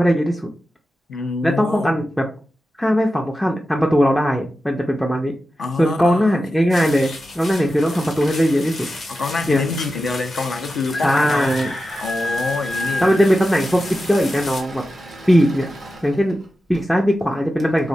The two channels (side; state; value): both; normal; correlation 0.92